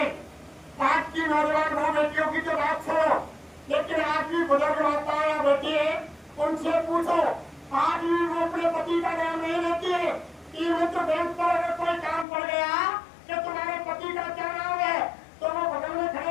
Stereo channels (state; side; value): drops out; right; at 12.2 s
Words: आज की नौजवान बहु बेटियों की तो बात छोड़ो, लेकिन आज भी बुजुर्ग माता या बेटी है, उनसे पूछो, आज भी वो अपने पति का नाम नहीं लेती है कि मित्र बैंक पर अगर कोई काम पड़ गया कि तुम्हारे पति का क्या नाम है, तो वो बगल में